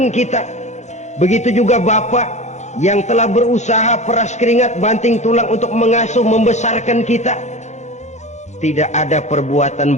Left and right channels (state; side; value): late; right; 0.33 ms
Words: kita. Begitu juga bapak yang telah berusaha peras keringat banting tulang untuk mengasuh membesarkan kita. Tidak ada perbuatan